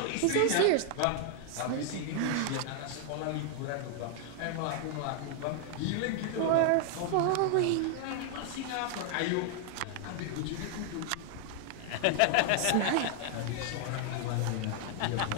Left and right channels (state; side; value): different; both; correlation 0.00